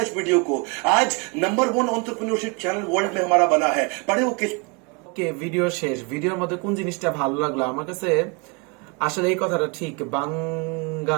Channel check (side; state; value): left; quieter; 31.1 dB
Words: वीडियो को। आज नंबर 1 एंटरप्रेन्योरशिप चैनल वर्ल्ड में हमारा बना है। पढ़े वो किस ভিডিও শেষ। ভিডিওর মধ্যে কোন জিনিসটা ভালো লাগলো আমার কাছে, আসলে এই কথাটা ঠিক,